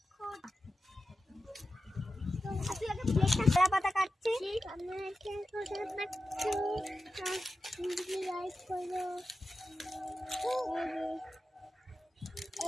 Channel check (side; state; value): both; normal; correlation 0.92